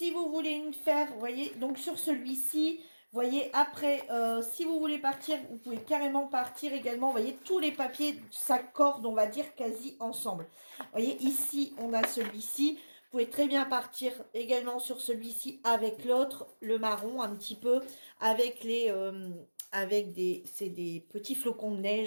vous voulez une faire, vous voyez, donc sur celui-ci, vous voyez, après, si vous voulez partir, vous pouvez carrément partir également. Vous voyez, tous les papiers s'accordent, on va dire, quasi ensemble. Vous voyez, ici, on a celui-ci. Vous pouvez très bien partir également sur celui-ci avec l'autre, le marron un petit peu, avec c'est des petits flocons de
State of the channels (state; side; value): inverted; both; correlation -1.00